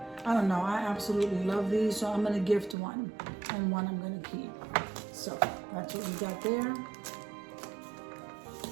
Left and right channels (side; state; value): left; drops out; at 2.8 s